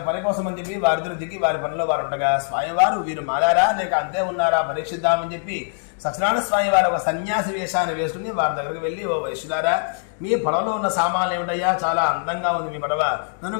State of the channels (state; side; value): silent; right; digital silence